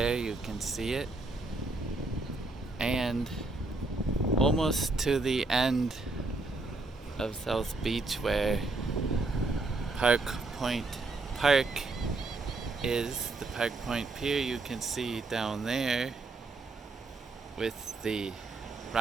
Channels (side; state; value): left; quieter; 3.4 dB